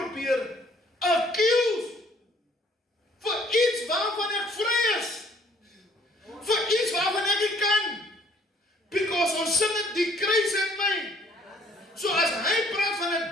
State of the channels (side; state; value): both; normal; correlation 0.60